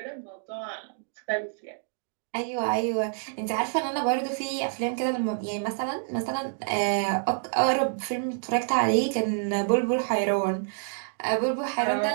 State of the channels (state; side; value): silent; left; digital silence